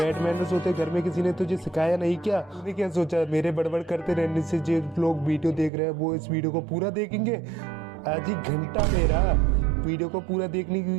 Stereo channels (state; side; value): drops out; left; at 5.7 s